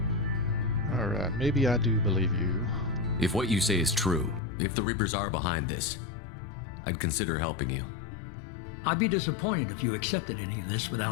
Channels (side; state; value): right; drops out; at 4.4 s